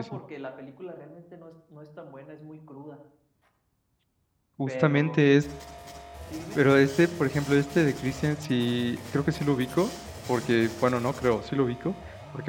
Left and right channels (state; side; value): identical; both; correlation 1.00